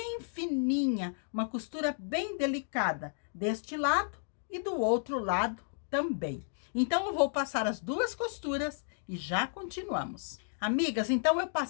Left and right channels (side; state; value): right; silent; digital silence